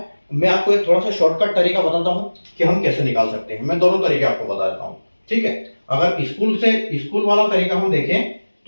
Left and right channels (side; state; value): both; inverted; correlation -1.00